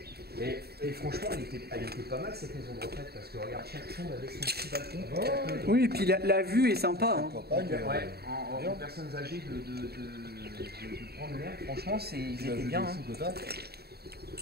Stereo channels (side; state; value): left; late; 0.46 ms